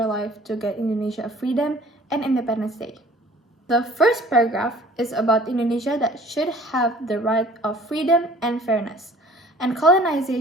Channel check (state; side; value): normal; both; correlation 0.51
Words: life to get Indonesia a freedom and Independence Day. The first paragraph is about Indonesia that should have the right of freedom and fairness, and